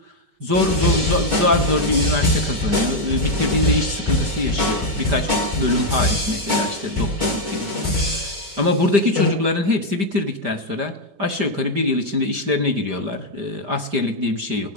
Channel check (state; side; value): late; left; 5.1 ms